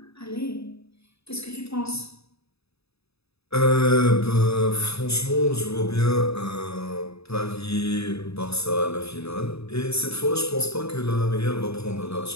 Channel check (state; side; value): late; right; 0.78 ms